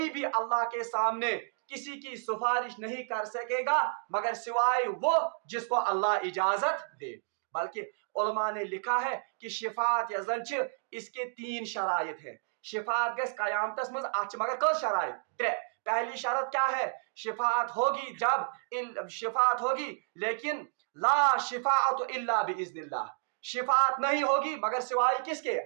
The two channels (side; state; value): left; silent; digital silence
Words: भी अल्लाह के सामने किसी की सिफारिश नहीं कर सकेगा मगर सिवाय वो जिसको अल्लाह इजाजत दे। बल्कि उलमा ने लिखा है कि शिफात यजन इसके 3 शराइत है। शिफात गस कयामतस मज मगर कस शराइत त्रे। पहली शरत क्या है, शिफात होगी जब शिफात होगी लेकिन ला शिफाअत इल्ला बिइज़्निल्लाह, शिफात नहीं होगी मगर सिवाय किसके,